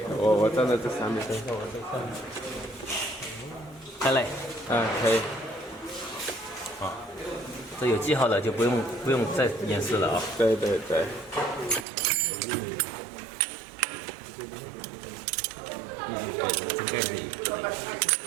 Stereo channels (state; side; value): drops out; left; at 11.9 s